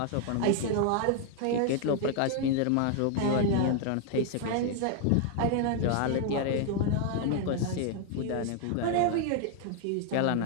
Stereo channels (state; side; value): different; both; correlation 0.00